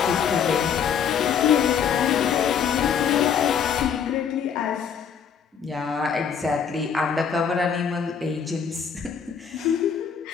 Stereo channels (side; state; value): right; quieter; 7.3 dB